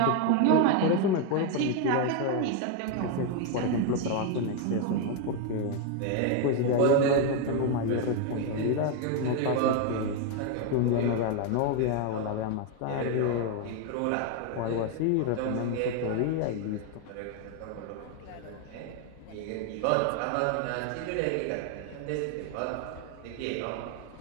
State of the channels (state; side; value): different; both; correlation 0.01